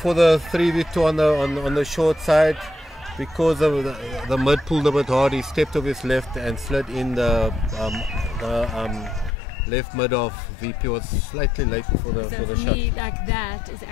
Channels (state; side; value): drops out; right; at 9.3 s